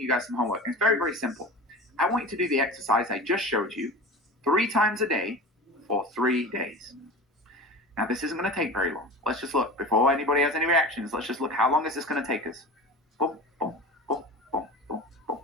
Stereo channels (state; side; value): normal; both; correlation 0.33